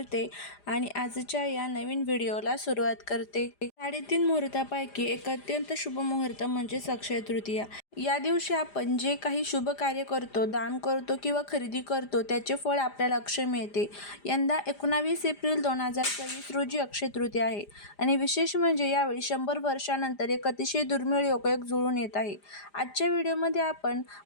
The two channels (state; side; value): late; right; 5.0 ms